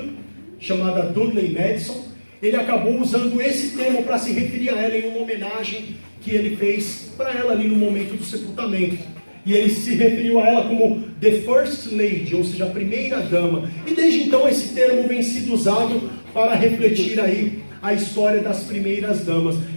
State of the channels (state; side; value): inverted; both; correlation -1.00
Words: chamada Dudley Madison, ele acabou usando esse termo para se referir a ela em uma homenagem que ele fez para ela ali no momento do sepultamento. E ele se referiu a ela como The First Lady, ou seja, a primeira-dama. E desde então esse termo vem sido usado para refletir aí a história das primeiras damas.